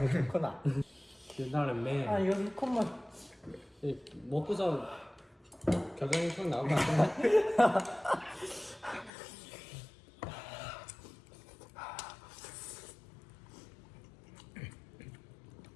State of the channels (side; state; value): right; drops out; at 9.1 s